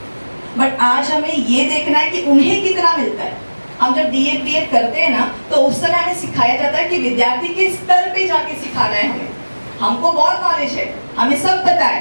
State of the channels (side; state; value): both; inverted; correlation -1.00